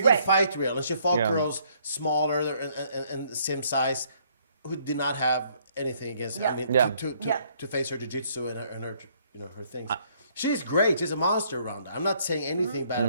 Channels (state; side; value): inverted; both; correlation -0.65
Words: good fight reel. And she fought girls smaller and same size who did not have anything against her. I mean, to face her jiu-jitsu and her things. She's great. She's a monster, Ronda. I'm not saying anything bad